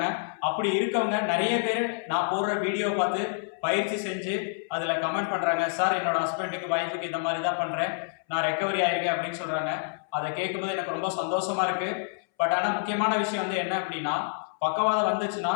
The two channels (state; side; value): silent; right; 60 dB below the other